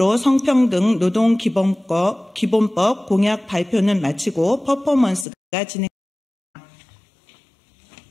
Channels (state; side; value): drops out; right; at 5.2 s